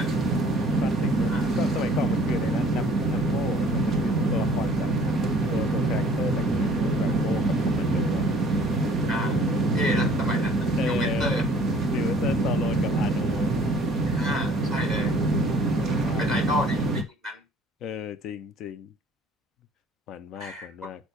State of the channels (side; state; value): both; normal; correlation 0.54